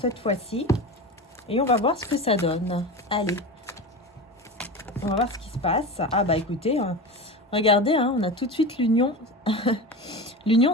fois-ci. Et on va voir ce que ça donne. Allez. On va voir ce qui se passe. Ah bah écoutez, regardez, hein, on a tout de suite l'union l'union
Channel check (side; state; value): both; normal; correlation 0.27